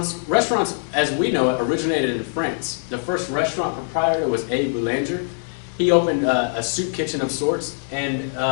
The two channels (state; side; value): silent; right; digital silence